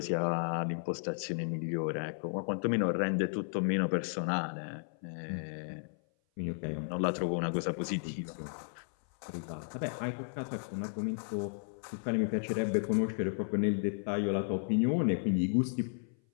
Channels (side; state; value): right; silent; 55 dB below the other